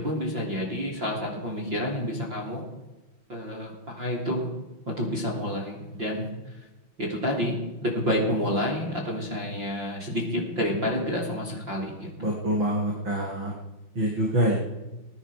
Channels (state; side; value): late; left; 5.8 ms